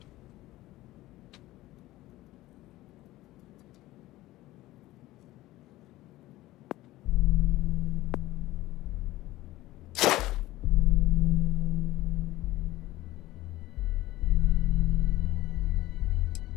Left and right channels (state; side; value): quieter; right; 17.0 dB